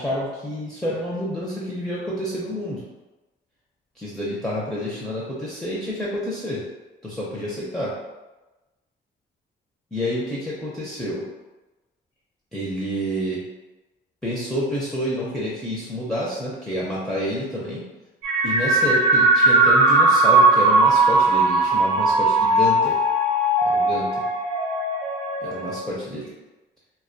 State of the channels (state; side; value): normal; both; correlation 0.28